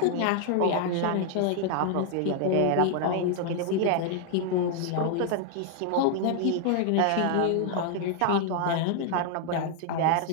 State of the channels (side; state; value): both; different; correlation 0.00